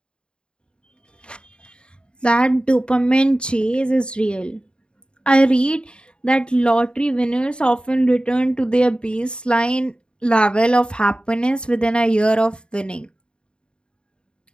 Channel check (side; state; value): right; late; 0.052 ms